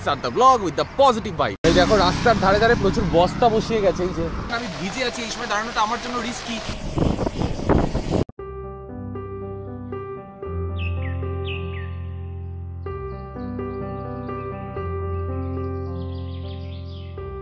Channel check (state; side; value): identical; both; correlation 1.00